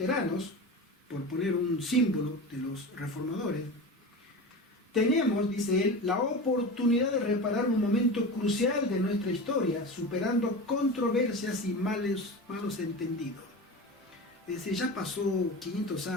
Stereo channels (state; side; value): normal; both; correlation 0.28